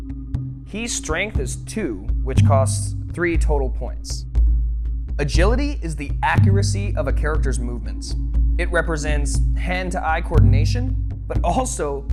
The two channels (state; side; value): identical; both; correlation 1.00